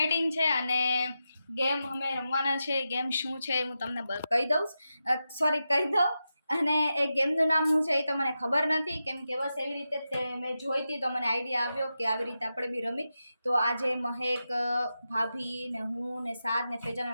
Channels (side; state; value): both; inverted; correlation -0.90